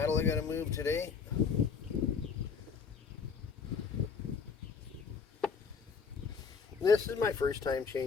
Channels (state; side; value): quieter; right; 5.8 dB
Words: I got to move today. This is my first time